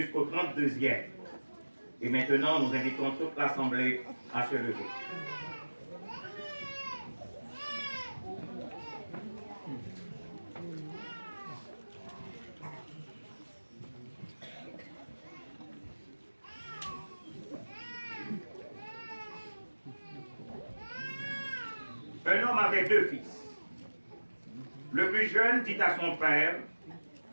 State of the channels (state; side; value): inverted; both; correlation -1.00